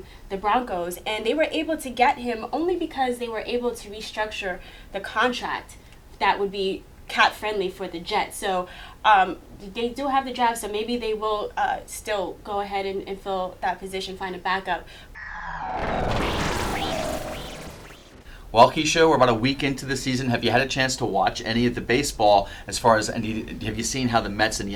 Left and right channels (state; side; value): identical; both; correlation 1.00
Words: the Broncos, and they were able to get him only because they were able to restructure the contract that would be cap friendly for the Jets. So they do have the draft, so maybe they will still go ahead and fill that position, find a backup. Well, Keisha, we're about a week into the season. Have you had a chance to watch any of the baseball, as far as, and have you seen how the Mets and